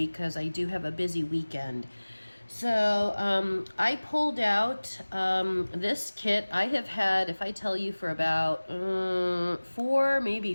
because I do have a busy weekend. So I pulled out this kit I have had, if I tell you, for about 4, maybe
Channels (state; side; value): inverted; both; correlation -1.00